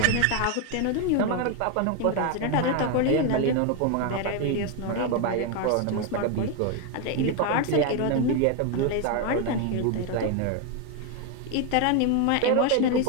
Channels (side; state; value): both; different; correlation 0.01